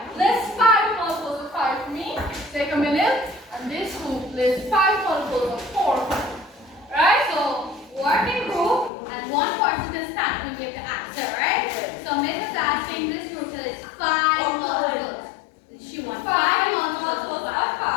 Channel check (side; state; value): right; drops out; at 8.9 s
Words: List 5 multiples of 5 for me. Take a minute. And this group lists 5 multiples of 4 for me. Right? So work in group, and one person can stand and give the answer, right? So Miss is asking this group to list 5 multiples. She wants 5 multiples of 5.